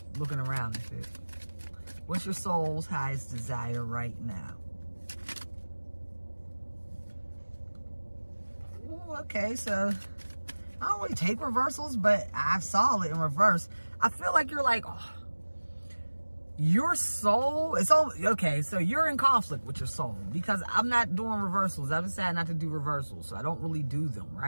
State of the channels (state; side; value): inverted; both; correlation -1.00